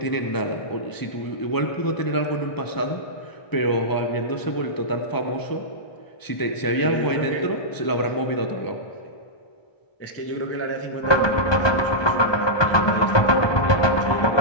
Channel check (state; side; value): late; right; 1.2 ms